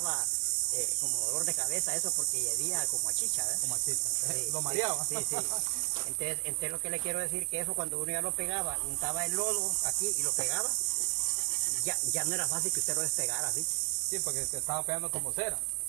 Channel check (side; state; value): left; quieter; 34.0 dB